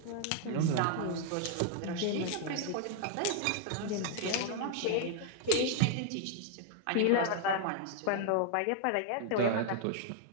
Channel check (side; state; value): both; different; correlation 0.00